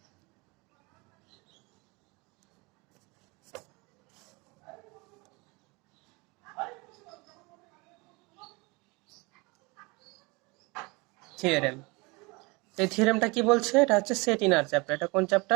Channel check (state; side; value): quieter; left; 26.5 dB